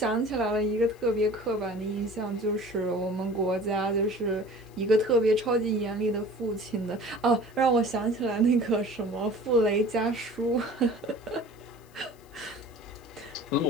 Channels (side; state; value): left; noise; hiss, 29 dB below the sound